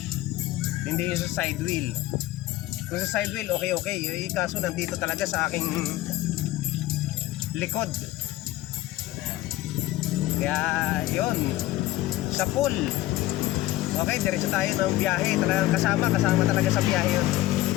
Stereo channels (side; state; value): right; quieter; 16.4 dB